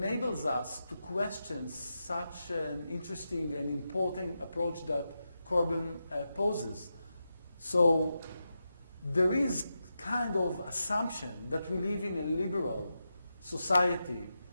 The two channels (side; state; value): both; inverted; correlation -0.89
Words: us to question such an interesting and important approach that Corbyn poses. So there is kind of assumption that we live in a liberal society